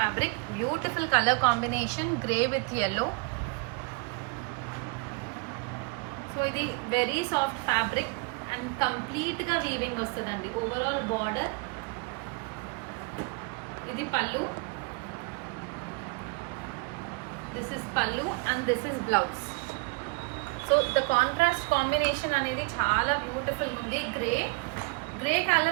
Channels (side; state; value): left; quieter; 29.8 dB